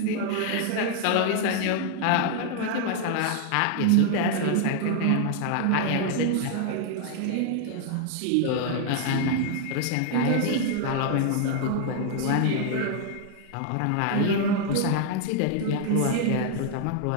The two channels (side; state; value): both; different; correlation 0.00